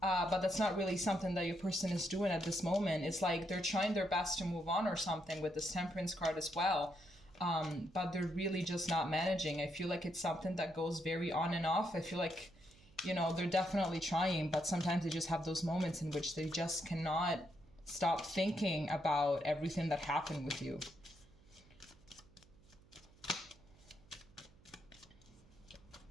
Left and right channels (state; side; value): noise; right; hum, 26 dB below the sound